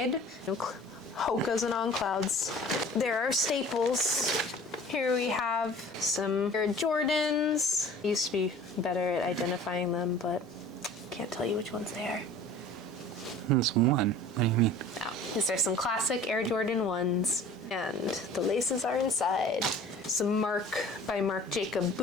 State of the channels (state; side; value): normal; both; correlation 0.45